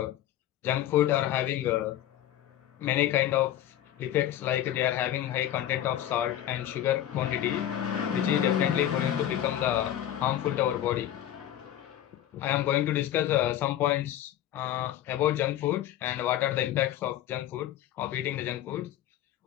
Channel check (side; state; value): right; quieter; 12.0 dB